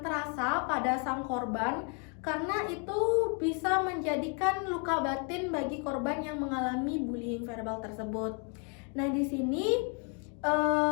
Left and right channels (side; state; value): right; quieter; 39.0 dB